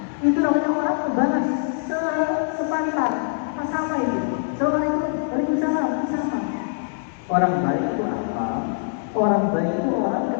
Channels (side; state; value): right; silent; digital silence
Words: Itu namanya orang membalas sepantar, sama itu. Assalamualaikum, waalaikumsalam, sama. Orang baik itu apa? Orang baik itu orang